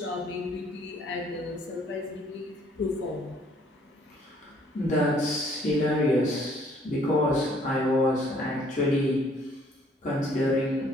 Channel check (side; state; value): both; normal; correlation 0.62